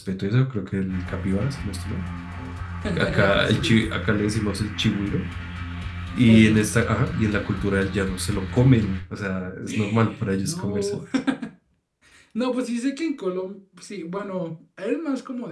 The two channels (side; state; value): both; identical; correlation 1.00